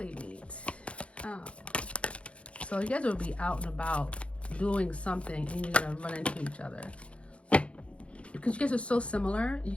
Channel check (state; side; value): late; right; 0.061 ms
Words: meet? So you guys will be out and about doing something and you're gonna run into each other because you guys are so similar. You